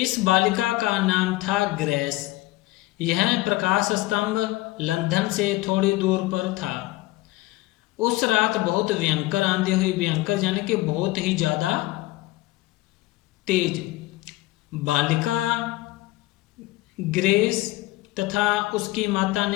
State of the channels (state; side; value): quieter; right; 18.7 dB